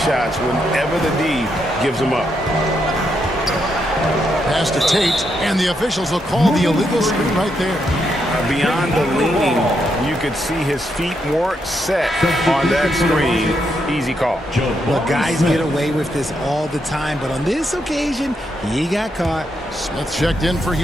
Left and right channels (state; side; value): normal; both; correlation 0.80